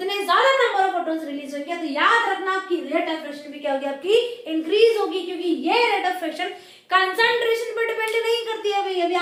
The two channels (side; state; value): both; identical; correlation 1.00